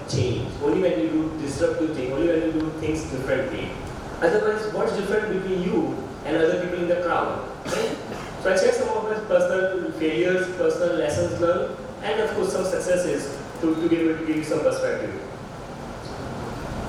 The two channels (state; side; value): identical; both; correlation 1.00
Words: change, only when you do disruptive things, only when you do things differently. Otherwise, what's different between you and other people in the crowd? Right? So I share some of my personal failures, personal lessons learned, and of course some successes to be able to give you some perspective.